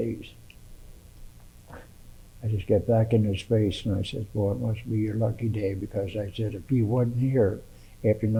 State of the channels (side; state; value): both; identical; correlation 1.00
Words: I just got back in his face, and I said, well, it must be your lucky day, because I said, if you wasn't here after